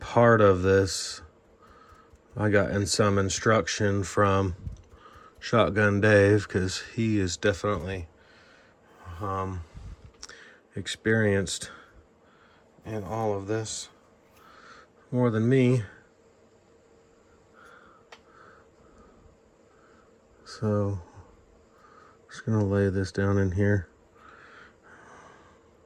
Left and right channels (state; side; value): identical; both; correlation 1.00